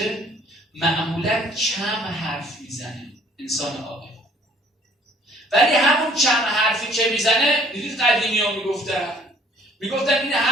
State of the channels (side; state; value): both; normal; correlation 0.57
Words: معمولا کم حرف میزنه انسان عاقل. ولی همون کم حرفی که میزنه، دیدید قدیمی ها میگفتن این